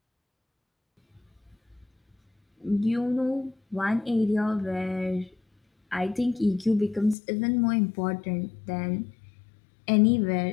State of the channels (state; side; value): drops out; right; at 7.2 s